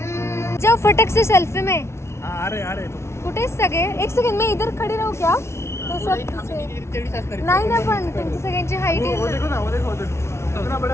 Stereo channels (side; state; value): right; late; 0.13 ms